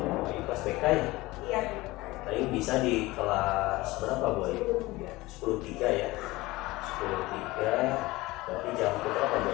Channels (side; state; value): right; quieter; 20.2 dB